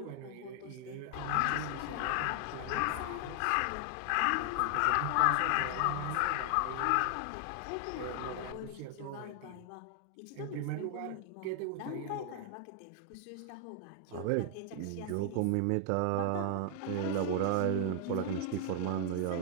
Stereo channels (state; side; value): different; both; correlation 0.00